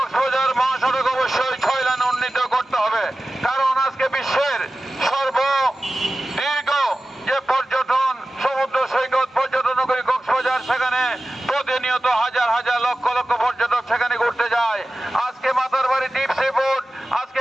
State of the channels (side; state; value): both; normal; correlation 0.96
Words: মহাসড়ক অবশ্যই 6 লেনে উন্নীত করতে হবে, কারণ আজকে বিশ্বের সর্বদীর্ঘ যে পর্যটন সমুদ্র সৈকত পর্যটন নগরী কক্সবাজার, সেখানে প্রতিনিয়ত হাজার হাজার লক্ষ লক্ষ পর্যটক সেখানে ঘুরতে যায়। আজকে মাতারবাড়ি দ্বীপ সিবোর্ড,